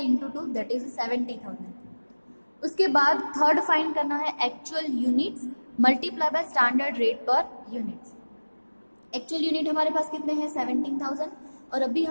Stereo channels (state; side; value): inverted; both; correlation -1.00